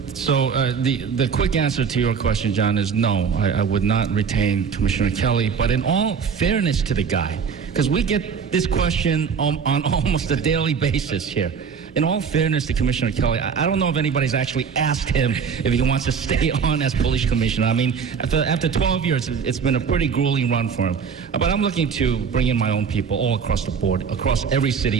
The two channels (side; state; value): left; quieter; 6.3 dB